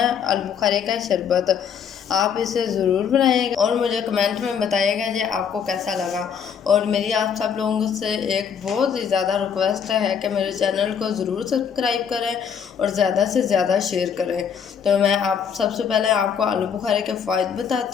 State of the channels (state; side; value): quieter; right; 7.4 dB